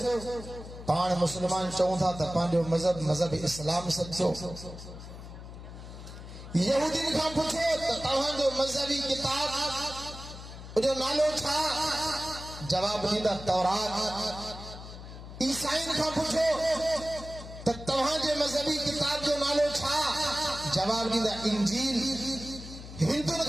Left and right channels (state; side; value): noise; left; hum, 13 dB below the sound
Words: पाण मुसलमान चऊं था त पंहिंजो मजहब इस्लाम सचो। यहूदीन खां पुछो त तव्हांजो मजहबी किताब जो नालो छा? जवाब ॾींदा तौरात। ईसाईन खां पुछो त तव्हांजे मजहबी किताब जो नालो छा? जवाब ॾींदा इंजील। हिंदुनि